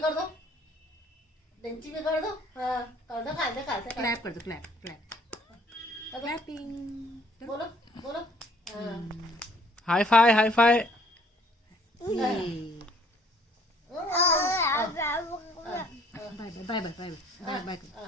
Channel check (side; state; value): both; normal; correlation 0.59